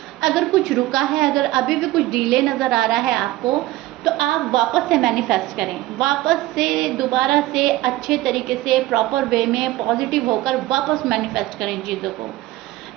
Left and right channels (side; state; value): left; quieter; 17.0 dB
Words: अगर कुछ रुका है, अगर अभी भी कुछ डिले नज़र आ रहा है आपको, तो आप वापस से मैनिफेस्ट करें, वापस से दोबारा से अच्छे तरीके से प्रॉपर वे में पॉजिटिव होकर वापस मैनिफेस्ट करें चीज़ों को।